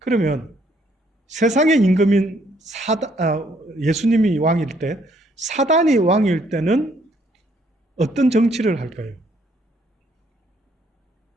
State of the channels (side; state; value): both; normal; correlation 0.68